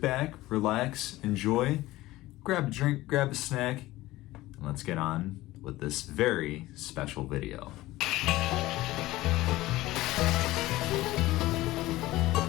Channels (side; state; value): right; quieter; 17.6 dB